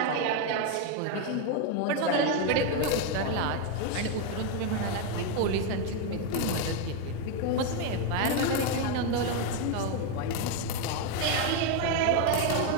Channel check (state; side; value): different; both; correlation 0.02